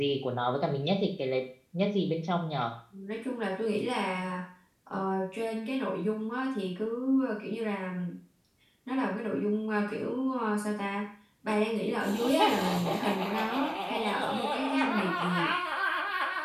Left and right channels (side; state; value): both; identical; correlation 1.00